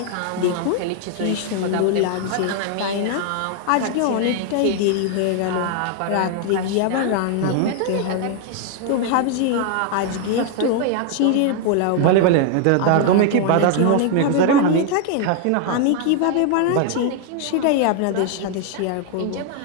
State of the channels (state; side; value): different; both; correlation 0.00